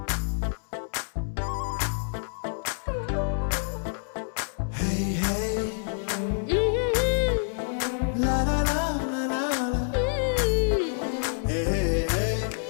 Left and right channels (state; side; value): silent; right; 60 dB below the other